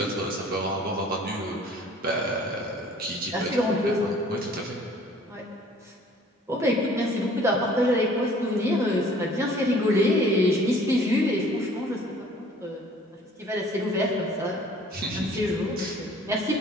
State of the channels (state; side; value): normal; both; correlation 0.53